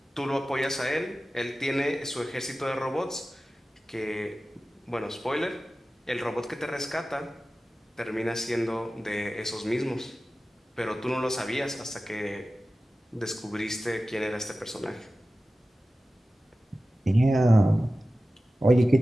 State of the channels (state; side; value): normal; both; correlation 0.95